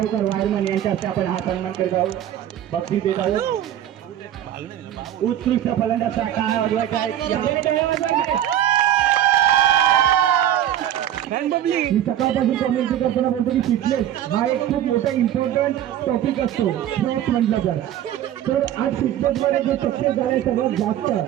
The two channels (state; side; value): quieter; left; 11.4 dB